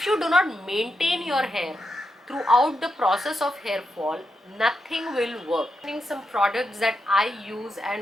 you do not maintain your hair throughout the process of hair fall, nothing will work. Some products that I use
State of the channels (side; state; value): both; normal; correlation 0.85